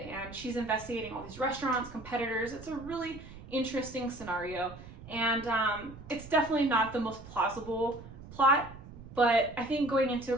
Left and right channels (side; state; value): right; noise; rumble, 16 dB below the sound